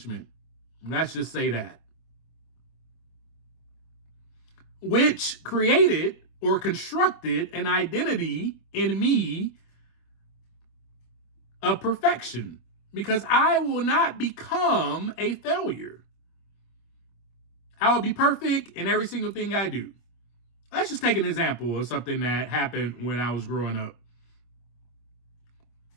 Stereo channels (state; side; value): late; right; 25 ms